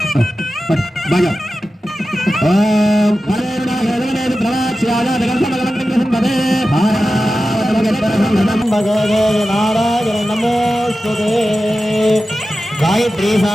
బాగా ఓం నారాయణ నమోస్తుతే. గాయత్రి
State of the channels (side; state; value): both; normal; correlation 0.93